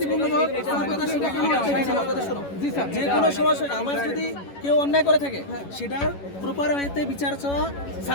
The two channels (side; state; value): right; late; 11 ms